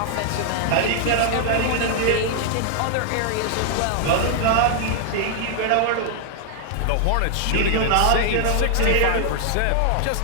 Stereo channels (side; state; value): both; different; correlation 0.00